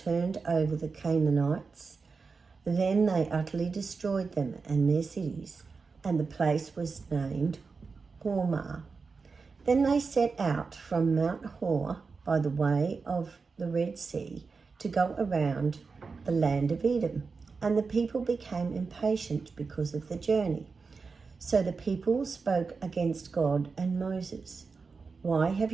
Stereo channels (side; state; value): left; quieter; 4.7 dB